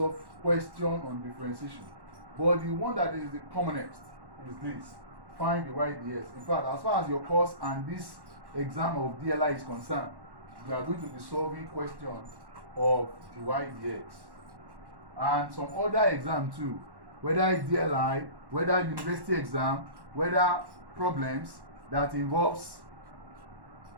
question on differentiation. But the one that is the commonest is this: find the y dx. In fact, as far as your course and this exam of DLI is concerned, you are going to be solving questions of the y dx. And some other exam too, whether it's DLI, whether university exam, whether problems that involves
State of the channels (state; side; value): late; left; 1.1 ms